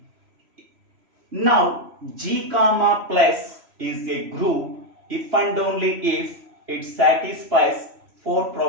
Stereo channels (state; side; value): late; left; 3.0 ms